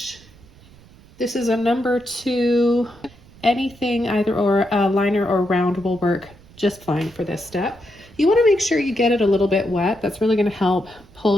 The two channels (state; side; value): noise; right; rumble, 24 dB below the sound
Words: This is a number 2. Anything, either or a liner or round, will work just fine for this step. You want to make sure you get it a little bit wet. That's really going to help